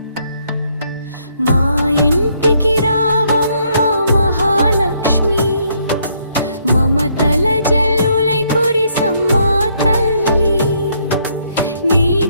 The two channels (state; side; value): inverted; both; correlation -0.71